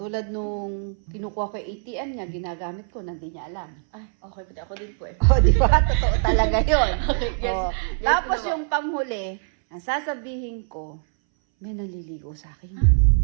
nung kinukuha ko yung ATM niya, ginagamit ko, hindi niya alam. Ay, okay po. Ako din po eh. O, di ba? Totoo talaga yun. Okay, yes. O, Yes, tapos ano ba? yung panghuli, ang sasabihin ko, may naliligo sa akin.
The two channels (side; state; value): left; silent; 61 dB below the other